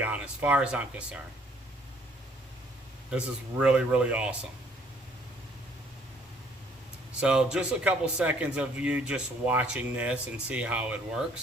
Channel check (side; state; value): both; normal; correlation 0.61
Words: honest, as far as I'm concerned. This is really, really awesome. So just a couple seconds of you just watching this and see how it